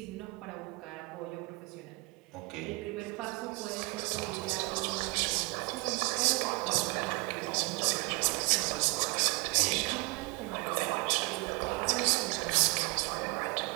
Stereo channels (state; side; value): quieter; left; 26.9 dB